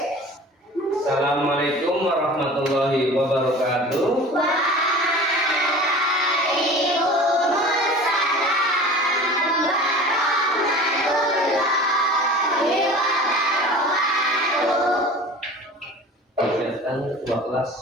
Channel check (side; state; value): both; normal; correlation 0.40